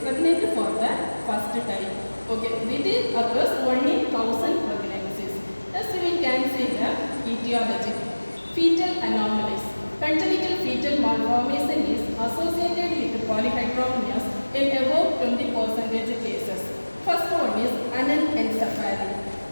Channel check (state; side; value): inverted; both; correlation -1.00